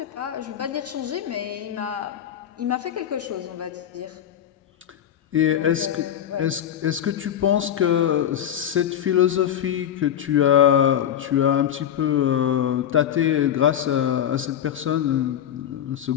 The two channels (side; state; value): right; quieter; 10.0 dB